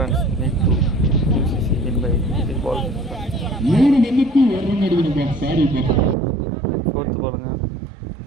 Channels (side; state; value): left; drops out; at 6.2 s